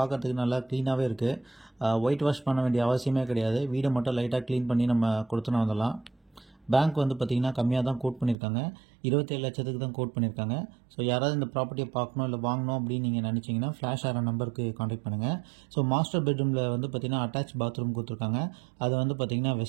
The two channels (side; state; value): left; drops out; at 8.3 s